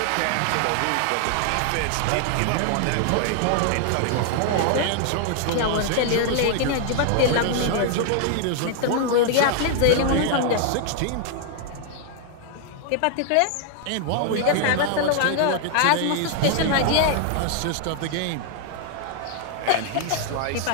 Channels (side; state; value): both; different; correlation 0.00